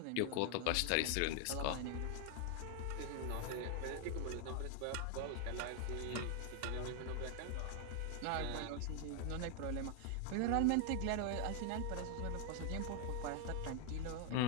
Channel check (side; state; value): both; different; correlation 0.00